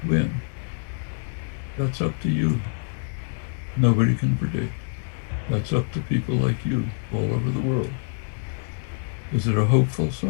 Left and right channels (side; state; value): right; silent; 61 dB below the other